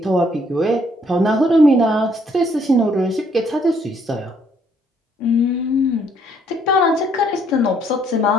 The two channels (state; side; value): normal; both; correlation 0.67